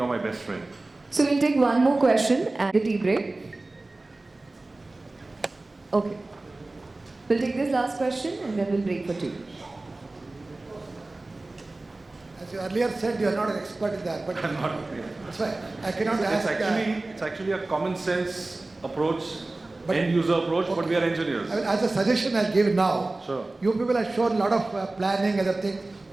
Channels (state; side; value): quieter; left; 3.0 dB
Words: my best friend. So we'll take one more question and the tea break. Okay. We'll take this last question and then we'll break for tea. As you earlier said, you are not an expert in that, but I'm not. that's why I cannot ask. It's actually a common sense approach, But- end user approach, but we are engineers. I mean, as a suggestion, I'll give now. Sure. You people have shown a lot of planning, other things